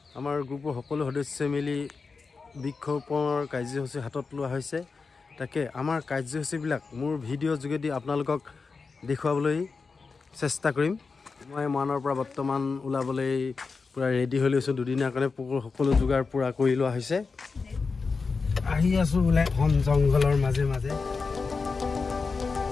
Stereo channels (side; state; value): right; quieter; 4.6 dB